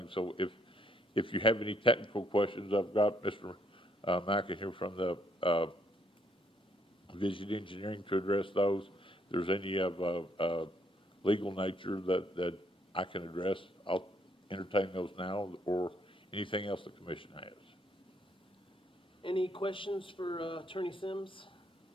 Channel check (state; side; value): normal; both; correlation 0.70